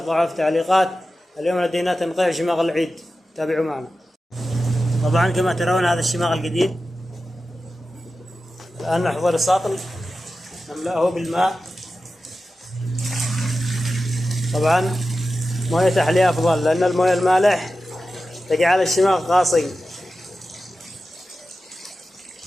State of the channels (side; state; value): both; normal; correlation 0.93